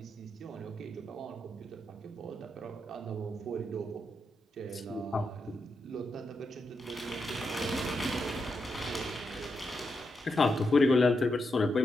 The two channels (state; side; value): normal; both; correlation 0.84